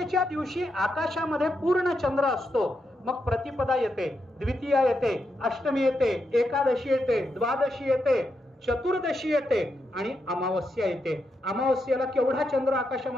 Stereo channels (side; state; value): both; normal; correlation 0.83